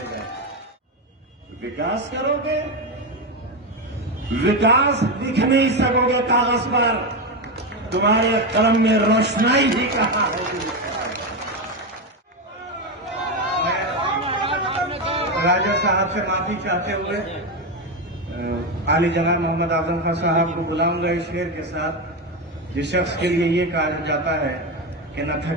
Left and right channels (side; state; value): both; normal; correlation 0.12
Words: गए, विकास करोगे? विकास लिख नहीं सकोगे कागज पर, तुम्हारे कलम में रोशनाई भी कहाँ होगी? राजा साहब से माफी चाहते हुए आली जनाब मोहम्मद आजम खान साहब को बुलाऊंगा इस शेर के साथ, जिस शख्स के लिए ये कहा जाता है कि न